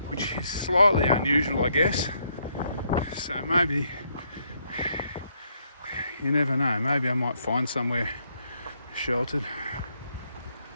which is slightly unusual, I guess. So maybe, you never know, maybe I might find somewhere sheltered.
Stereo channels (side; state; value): both; inverted; correlation -0.73